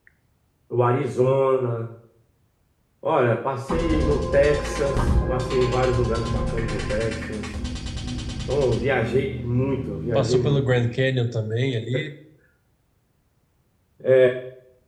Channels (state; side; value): identical; both; correlation 1.00